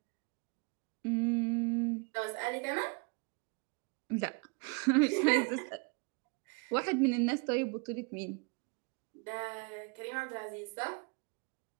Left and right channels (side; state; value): left; quieter; 33.0 dB